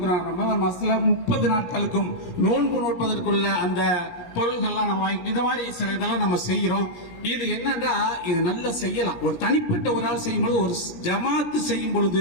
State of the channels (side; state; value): right; late; 17 ms